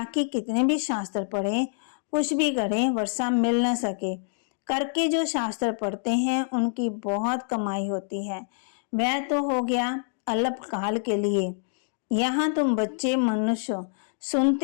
कितने भी शास्त्र पढ़े, कुछ भी करें, वर्षा मिल न सके। करके जो शास्त्र पढ़ते हैं उनकी बहुत कमाई होती है। वह तो हो गया अल्पकाल के लिए। यहाँ तुम बच्चे मनुष्य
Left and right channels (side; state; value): right; silent; digital silence